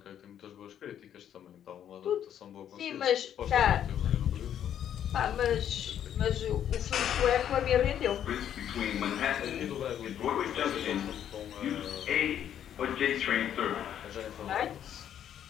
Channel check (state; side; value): quieter; right; 9.9 dB